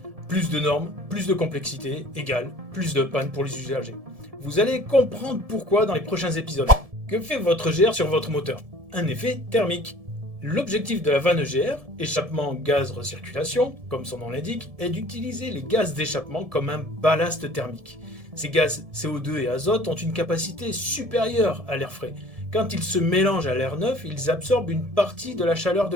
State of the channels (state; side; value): late; left; 1.7 ms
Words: plus de normes, plus de complexité, égale plus de panne pour les usagers. Vous allez comprendre pourquoi dans les prochains épisodes. Que fait votre EGR sur votre moteur? Un effet thermique. L'objectif de la vanne EGR, échappement gaz recirculation, comme son nom l'indique, est d'utiliser les gaz d'échappement comme un ballast thermique. Ces gaz CO2 et azote ont une capacité supérieure à l'air frais. Quand ils se mélangent à l'air neuf, ils absorbent une partie de la chaleur de